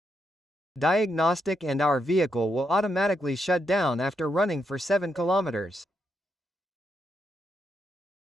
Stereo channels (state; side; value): normal; both; correlation 0.81